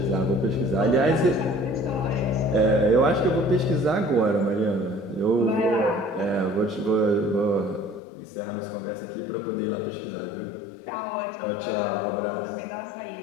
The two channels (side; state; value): right; drops out; at 8.0 s